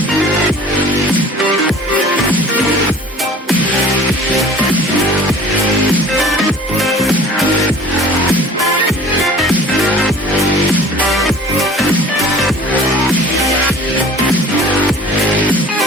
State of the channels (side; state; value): both; normal; correlation 0.45